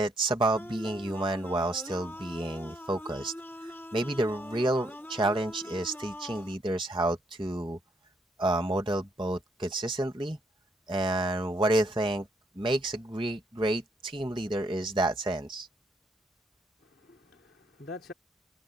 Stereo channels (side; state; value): both; normal; correlation 0.72